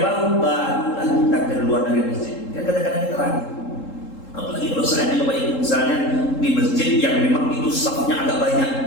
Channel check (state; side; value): late; right; 3.7 ms